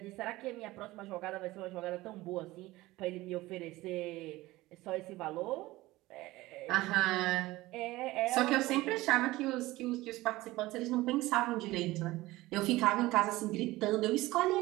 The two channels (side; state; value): left; quieter; 18.7 dB